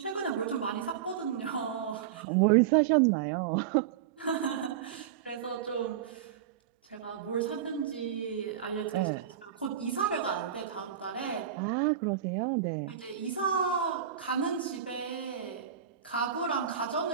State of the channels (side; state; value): left; quieter; 9.3 dB